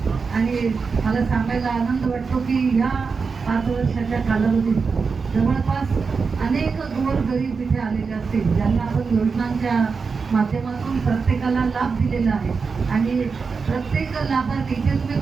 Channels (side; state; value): left; quieter; 5.0 dB